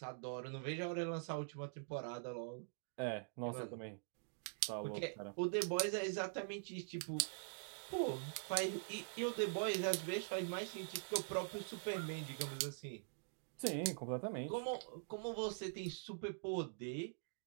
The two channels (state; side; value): silent; left; digital silence